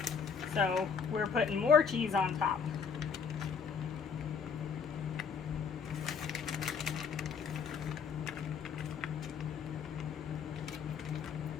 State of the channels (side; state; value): right; quieter; 6.2 dB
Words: So we're putting more cheese on top.